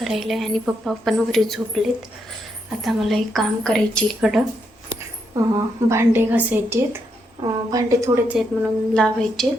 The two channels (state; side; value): normal; both; correlation 0.79